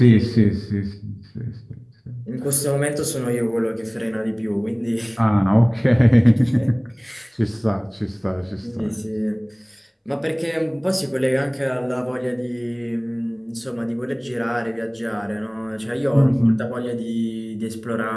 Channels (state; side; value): identical; both; correlation 1.00